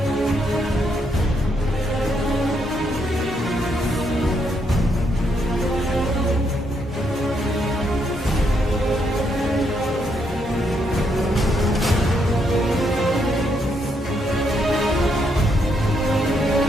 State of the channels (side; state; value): both; normal; correlation 0.76